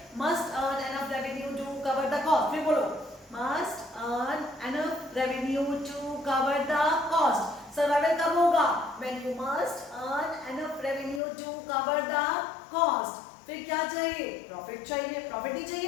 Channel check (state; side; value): drops out; right; at 11.2 s